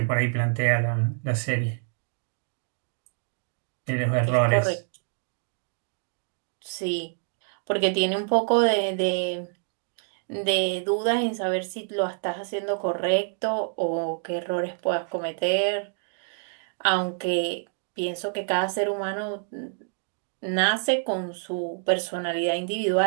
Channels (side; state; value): left; silent; digital silence